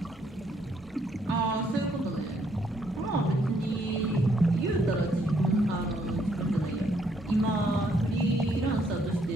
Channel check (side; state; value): both; normal; correlation 0.70